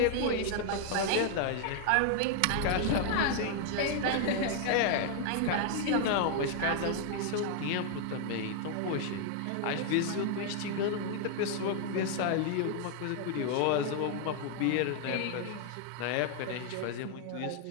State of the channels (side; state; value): both; different; correlation 0.00